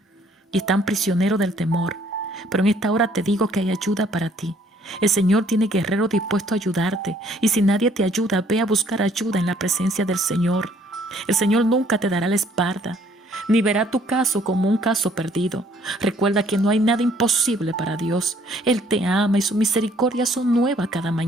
Y están prisioneros del temor. Pero en esta hora te digo que hay ayuda para ti. El Señor tiene guerreros dispuestos a ayudarte. Y si nadie te ayuda, ve a buscar ayuda en la presencia del Señor. El Señor nunca te dará la espalda, ni verá tu caso como un caso perdido. Recuerda que no hay nada imposible para Dios. Él te ama y sus misericordias son nuevas cada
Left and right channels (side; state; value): both; normal; correlation 0.62